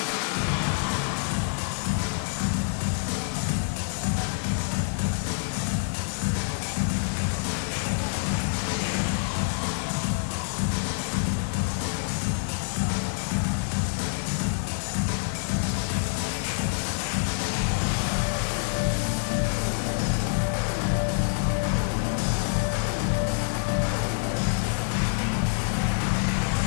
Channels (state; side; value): silent; right; digital silence